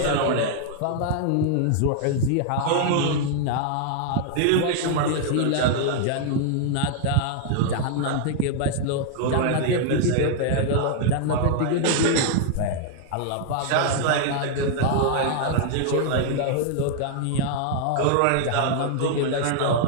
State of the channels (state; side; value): different; both; correlation 0.00